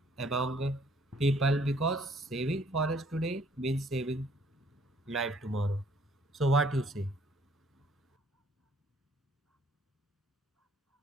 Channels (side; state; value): both; normal; correlation 0.62